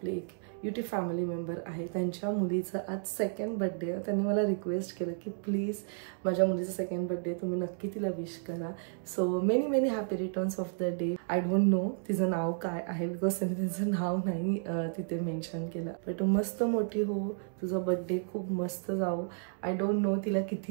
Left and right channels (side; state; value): left; silent; digital silence